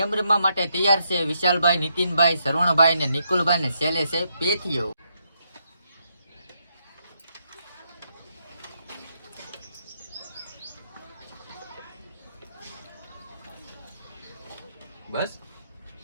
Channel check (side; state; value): both; inverted; correlation -0.78